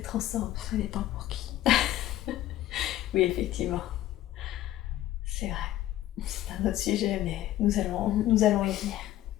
ensemble. Ça dépend pour qui. Oui, effectivement. C'est vrai. C'est un autre sujet, mais nous allons y venir.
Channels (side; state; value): right; quieter; 13.9 dB